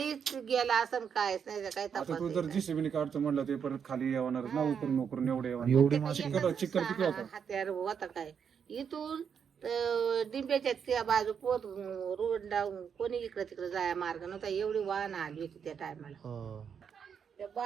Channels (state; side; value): quieter; left; 7.2 dB